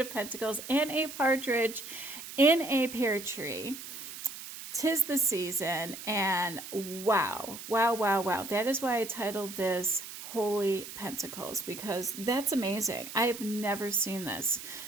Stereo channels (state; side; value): noise; right; hiss, 11 dB below the sound